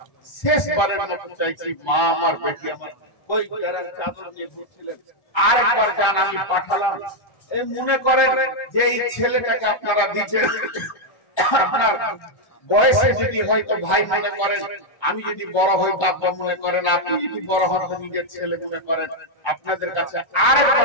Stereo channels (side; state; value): right; late; 1.3 ms